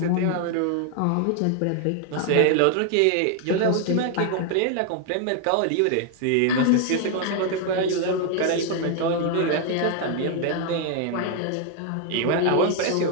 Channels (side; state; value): both; different; correlation 0.00